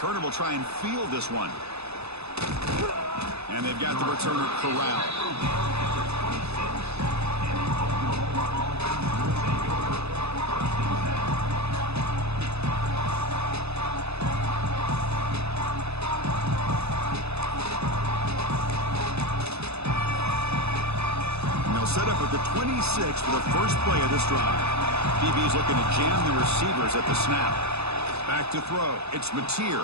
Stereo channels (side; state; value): left; late; 0.79 ms